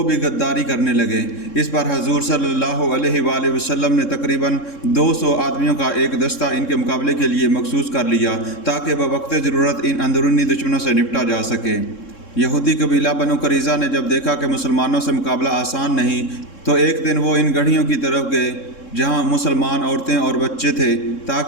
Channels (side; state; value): right; late; 3.7 ms